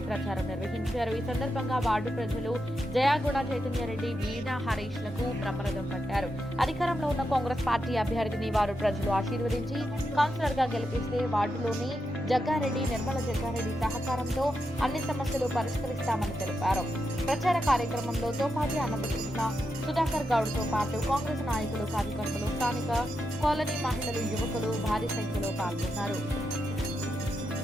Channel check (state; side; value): normal; both; correlation 0.86